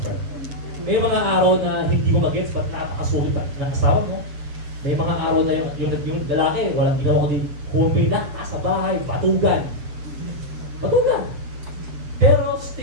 May mga araw na hindi mo mag-gets, ba't nakakasulit ng asawa mo? May mga araw na yung lalaki, walang ginawa ko din, humpay na, sa bahay, patugan. Patugan! Pero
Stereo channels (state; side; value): late; left; 7.8 ms